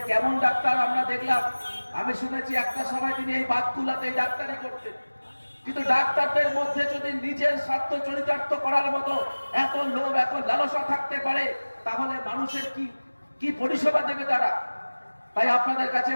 কেমন ডাক্তার আমরা দেখলাম। আমি শুনেছি একটা সময় তিনি এই বাতকুল্লাতে ডাক্তারি করতেন, কিন্তু ডাক্তারদের মধ্যে যদি নিজের স্বার্থ চরিতার্থ করার মতো এত লোভ, এত লালসা থাকতে পারে, তাহলে মানুষের কি পরিষেবা দেবে তারা? তাই আপনাদের কাছে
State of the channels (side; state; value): both; inverted; correlation -1.00